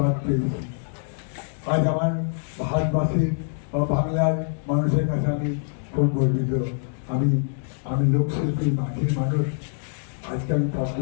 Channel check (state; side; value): silent; right; digital silence